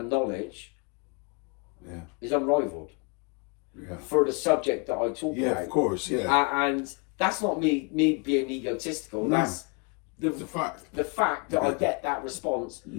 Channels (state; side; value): quieter; right; 32.1 dB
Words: knowledge is unrivaled. Yeah. For the subject that I talk about. Yeah, of course, yeah. And that's not me being egotistical. No. That's the fact. The fact that I get that response,